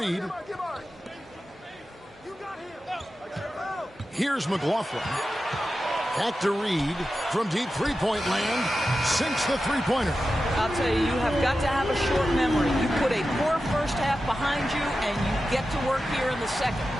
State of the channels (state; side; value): normal; both; correlation 0.92